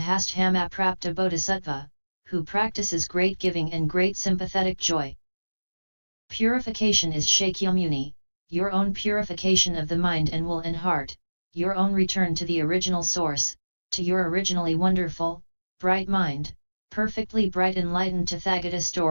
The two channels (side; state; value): both; inverted; correlation -1.00